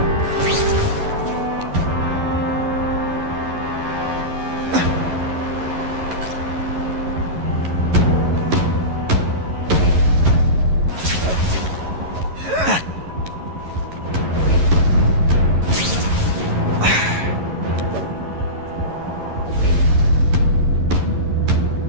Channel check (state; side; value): late; left; 11 ms